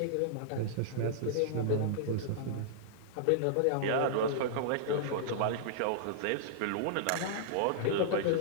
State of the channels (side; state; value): both; different; correlation -0.01